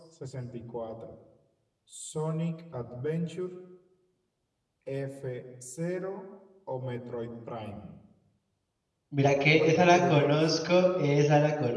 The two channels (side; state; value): both; identical; correlation 1.00